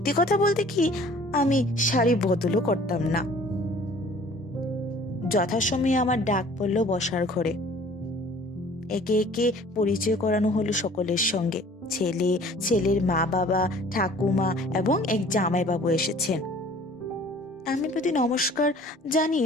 কথা বলতে কি, আমি শাড়ি বদলও করতাম না। যথাসময়ে আমার ডাক পড়ল বসার ঘরে। একে একে পরিচয় করানো হলো সকলের সঙ্গে। ছেলে, ছেলের মা বাবা, ঠাকুমা এবং এক জামাইবাবু এসেছেন। আমি প্রতি নমস্কার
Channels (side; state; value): both; normal; correlation 0.51